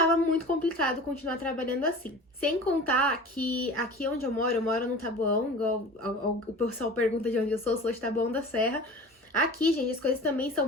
muito complicado continuar trabalhando assim. Sem contar que aqui onde eu moro no Taboão, igual o pessoal pergunta de onde eu sou de Taboão da Serra. Aqui, gente, as coisas também são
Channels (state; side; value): normal; both; correlation 0.37